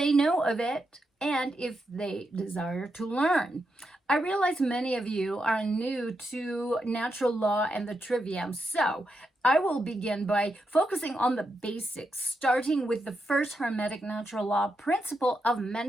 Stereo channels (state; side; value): normal; both; correlation 0.84